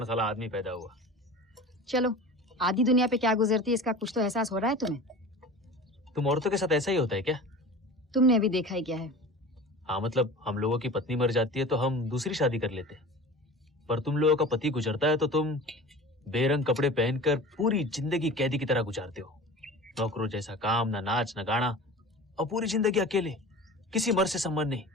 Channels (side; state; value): both; normal; correlation 0.36